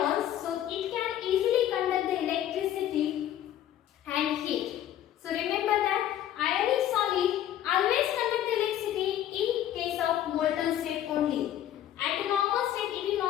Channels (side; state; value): right; quieter; 11.7 dB